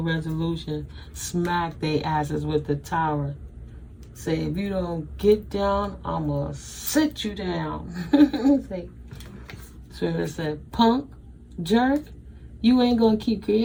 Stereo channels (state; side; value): identical; both; correlation 1.00